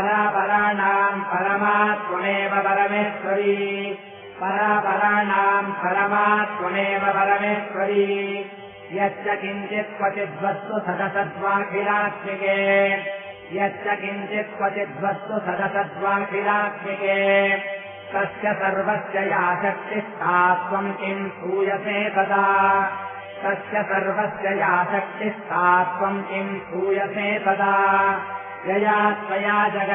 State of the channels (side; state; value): both; identical; correlation 1.00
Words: परमात्मनेव परमेश्वरी परापराणाम् परमात्मनेव परमेश्वरी यच्च किञ्चित् क्वचिद्वस्तु सदसद्वाखिलात्मिके यच्च किञ्चित् क्वचिद्वस्तु सदसद्वाखिलात्मिके तस्य सर्वस्य या शक्तिस्ता त्वम् किम् सूयसे तदा तस्य सर्वस्य या शक्तिस्ता त्वम् किम् सूयसे तदा यया त्वया